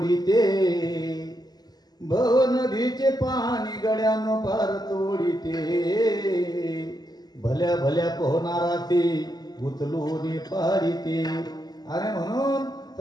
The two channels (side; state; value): right; late; 0.20 ms